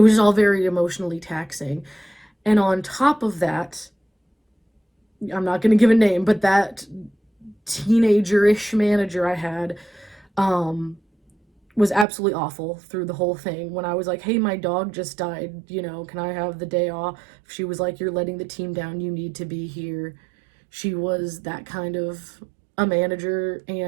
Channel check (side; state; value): left; drops out; at 12.1 s